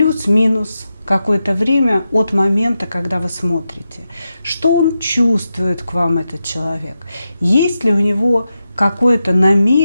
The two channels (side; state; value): both; inverted; correlation -0.89